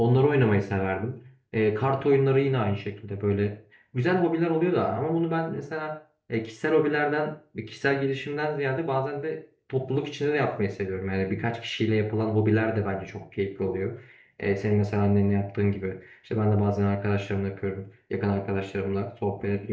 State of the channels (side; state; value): both; identical; correlation 1.00